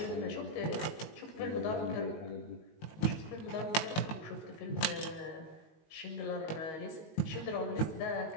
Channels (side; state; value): right; late; 19 ms